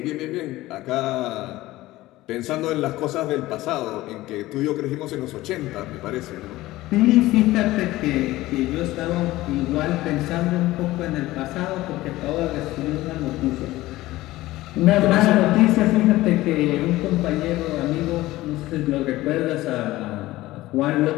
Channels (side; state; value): right; quieter; 17.4 dB